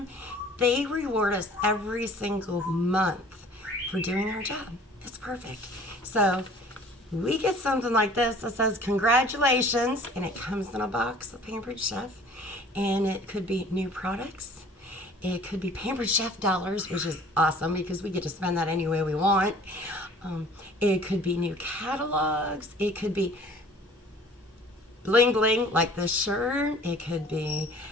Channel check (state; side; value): normal; both; correlation 0.50